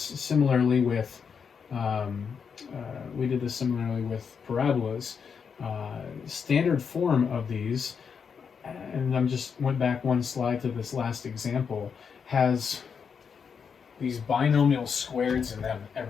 similarly with parabolas. Standard form of these, and I'm just went back one slide to this last example, has these binomial squareds in them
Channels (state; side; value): quieter; right; 6.4 dB